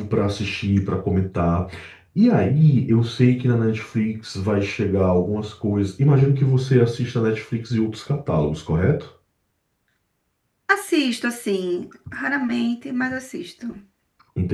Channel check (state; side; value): identical; both; correlation 1.00